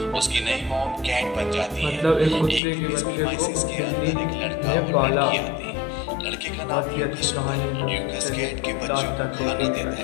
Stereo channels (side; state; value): right; drops out; at 2.6 s